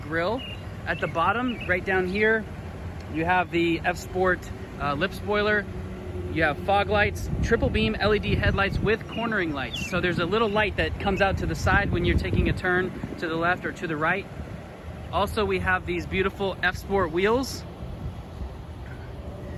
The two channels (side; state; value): both; identical; correlation 1.00